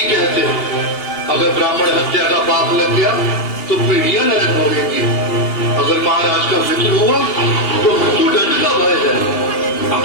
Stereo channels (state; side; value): late; right; 2.8 ms